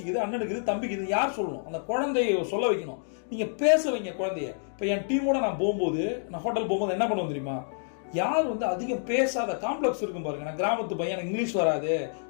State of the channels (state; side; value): silent; right; digital silence